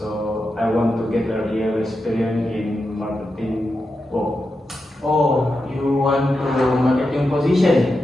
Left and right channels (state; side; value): normal; both; correlation 0.88